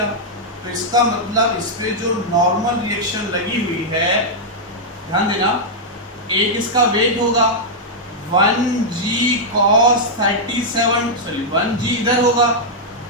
तो इसका मतलब इस पे जो नॉर्मल रिएक्शन लगी हुई है, ध्यान देना, एक इसका वेग होगा 1g cos 37, सॉरी 1g इधर होगा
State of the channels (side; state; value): both; normal; correlation -0.05